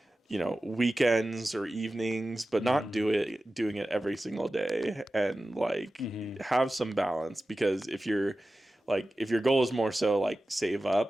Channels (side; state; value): both; normal; correlation 0.95